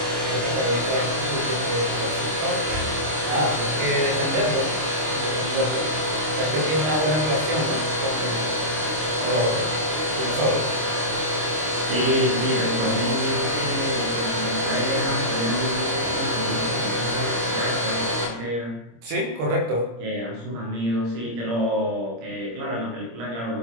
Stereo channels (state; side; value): late; left; 26 ms